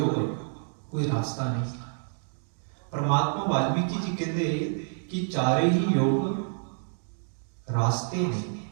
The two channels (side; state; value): left; silent; digital silence